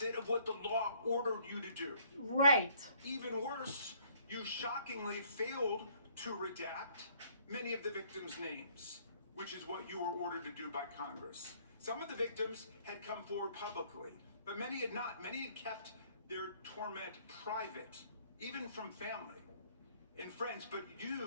of what the law ordered you to do. Right. Even worse, you shockingly failed to redact many of the victims' names, which is what you were ordered to do by Congress. Some of the victims had come forward publicly, but many had not. Many had kept their torment private, even from family and friends, but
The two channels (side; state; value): both; inverted; correlation -0.62